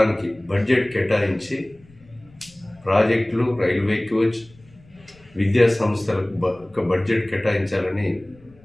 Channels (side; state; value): left; noise; rumble, 27 dB below the sound